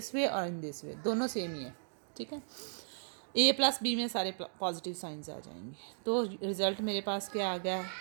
वे और इन दिस वे, दोनों सेम ही है, ठीक है। ए प्लस बी में सारे पॉजिटिव साइंस आ जाएंगे। तो रिज़ल्ट मेरे पास क्या आ गया,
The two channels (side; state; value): left; silent; digital silence